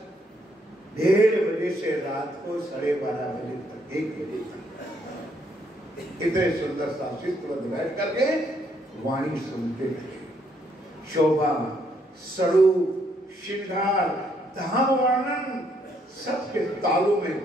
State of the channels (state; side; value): normal; both; correlation 0.71